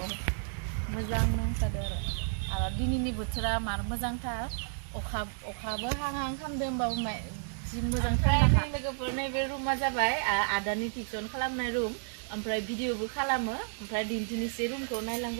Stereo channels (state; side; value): silent; left; 57 dB below the other